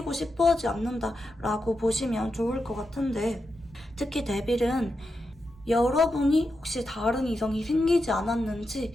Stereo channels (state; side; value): normal; both; correlation 0.87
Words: 싶어 하지 않는다라고 보시면 좋을 것 같은데, 특히 데빌은 여러분이 혹시 다른 이성이 생기지 않았는지